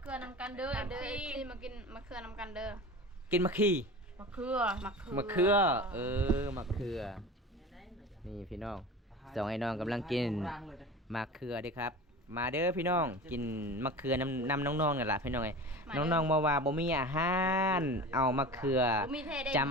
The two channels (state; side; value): normal; both; correlation 0.34